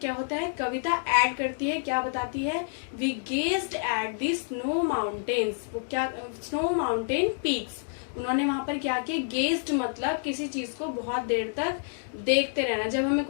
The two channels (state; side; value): silent; right; digital silence